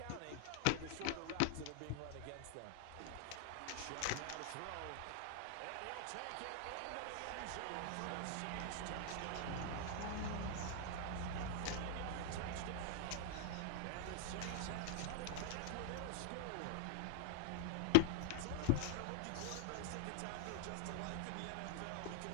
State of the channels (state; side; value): different; both; correlation 0.00